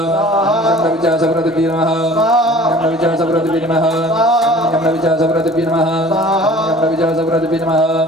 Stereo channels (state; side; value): normal; both; correlation 0.47